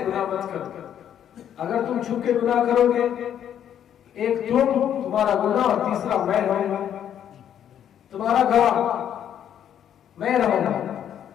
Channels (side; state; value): right; quieter; 9.8 dB